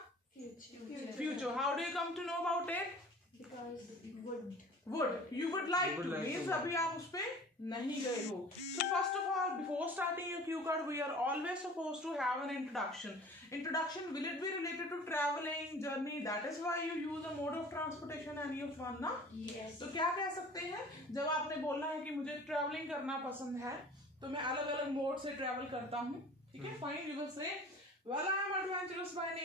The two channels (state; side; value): normal; both; correlation 0.44